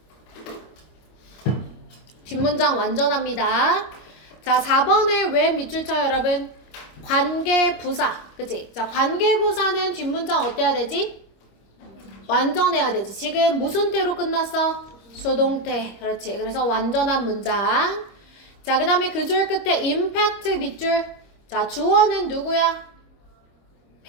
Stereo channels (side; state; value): right; late; 25 ms